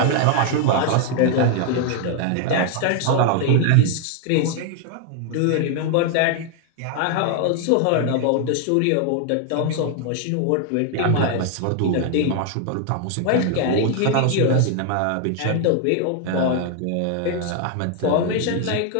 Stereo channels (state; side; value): different; both; correlation 0.00